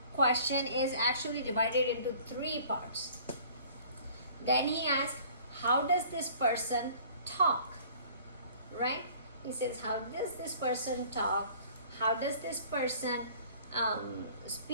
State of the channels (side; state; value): both; inverted; correlation -0.51